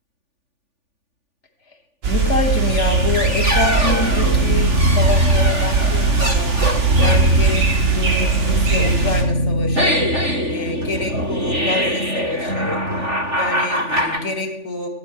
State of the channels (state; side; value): late; left; 3.4 ms